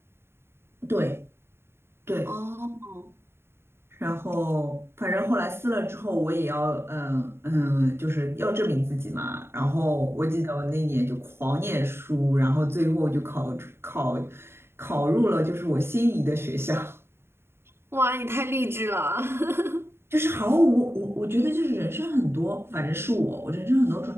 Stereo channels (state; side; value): late; left; 0.12 ms